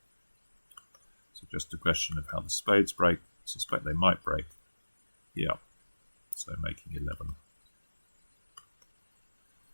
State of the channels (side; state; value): both; inverted; correlation -1.00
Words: So just a question of how the spades break. I suspect they might break. Yeah, so making 11.